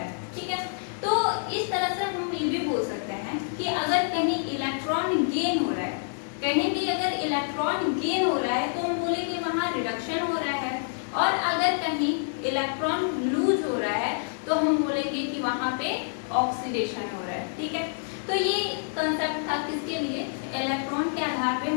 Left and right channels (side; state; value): right; silent; digital silence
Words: ठीक है, तो इस तरह से हम ये भी बोल सकते हैं कि अगर कहीं इलेक्ट्रॉन गेन हो रहा है, कहीं भी अगर इलेक्ट्रॉन गेन हो रहा है तो हम बोले कि वहां रिडक्शन हो रहा है, और अगर कहीं इलेक्ट्रॉन लूज हो रहा है तो हम बोलेंगे कि वहां पे ऑक्सीडेशन हो रहा है। ठीक है, तो ये कंसेप्ट था किसके लिए, इलेक्ट्रॉन के आधार पे